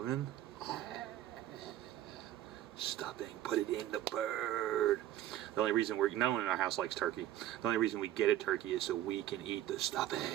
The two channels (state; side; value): quieter; left; 12.8 dB